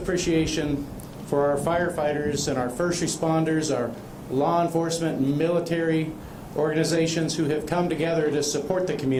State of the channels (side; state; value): both; identical; correlation 1.00